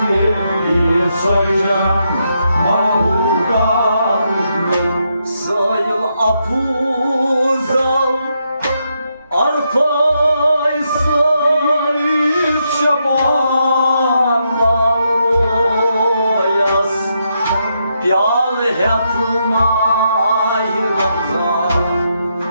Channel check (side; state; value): both; inverted; correlation -0.80